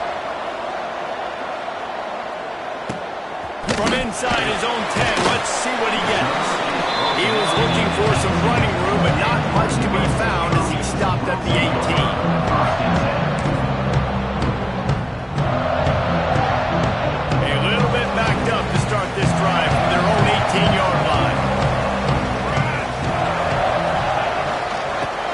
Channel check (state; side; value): identical; both; correlation 1.00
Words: From inside his own 10, let's see what he gets. He was looking for some running room, but not much to be found as he stopped at the 18. A little bit backed up to start this drive from their own 18-yard line.